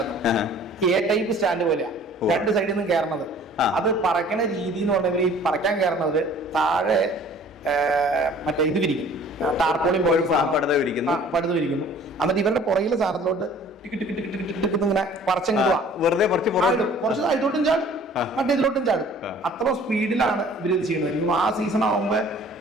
എ ടൈപ്പ് സ്റ്റാൻഡ് പോലെയാ, 2 സൈഡിൽ നിന്നും കയറണത്. അത് പറക്കണ രീതി എന്ന് പറഞ്ഞാൽ ഈ പറക്കാൻ കയറുന്നത് താഴെ മറ്റേ ഇത് വിരിക്കും, ടാർപോളിയും പോലെ പടുത വിരിക്കുന്നു. എന്നിട്ട് ഇവരുടെ പുറകിലെ സാധനത്തിലോട്ട് ഇങ്ങനെ പറിച്ചങ്ങ് വെറുതെ കുറച്ച് അതിലോട്ടും ചാടും, മറ്റേ ഇതിലോട്ടും ചാടും. അത്ര സ്പീഡിലാണ് ഇവർ ഇത് ചെയ്യുന്നത്. ആ സീസൺ ആകുമ്പോ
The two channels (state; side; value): normal; both; correlation 0.51